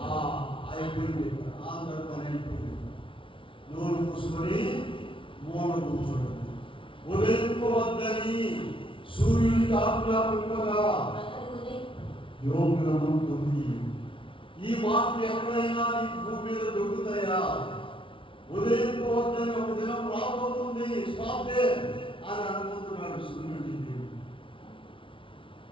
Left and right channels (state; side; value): late; right; 0.25 ms